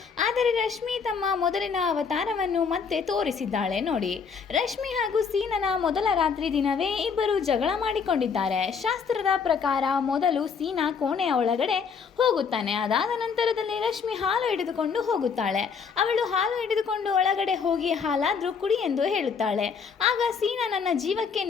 ಆದರೆ ರಶ್ಮಿ ತಮ್ಮ ಮೊದಲಿನ ಅವತಾರವನ್ನು ಮತ್ತೆ ತೋರಿಸಿದ್ದಾಳೆ ನೋಡಿ. ರಶ್ಮಿ ಹಾಗೂ ಸೀನನ ಮೊದಲ ರಾತ್ರಿ ದಿನವೇ ಇಬ್ಬರು ಜಗಳ ಮಾಡಿಕೊಂಡಿದ್ದಾರೆ. ಶಾಸ್ತ್ರದ ಪ್ರಕಾರ ಮೊದಲು ಸೀನಾ ಕೋಣೆಯ ಒಳಗಡೆ ಹೋಗುತ್ತಾನೆ. ಅದಾದ ನಂತರದಲ್ಲಿ ರಶ್ಮಿ ಹಾಲು ಹಿಡಿದುಕೊಂಡು ಹೋಗುತ್ತಾಳೆ. ಅವಳು ಹಾಲು ಹಿಡಿದುಕೊಂಡು ಒಳಗಡೆ ಹೋಗಿ ಹಾಲಾದ್ರೂ ಕುಡಿ ಎಂದು ಹೇಳುತ್ತಾಳೆ. ಆಗ ಸೀನಾ, ನನ್ನ ಜೀವಕ್ಕೆ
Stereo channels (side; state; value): right; quieter; 6.0 dB